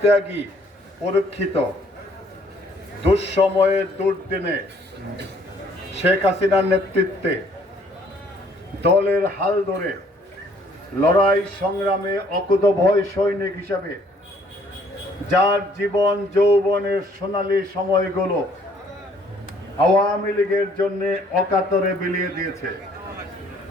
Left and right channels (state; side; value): normal; both; correlation 0.62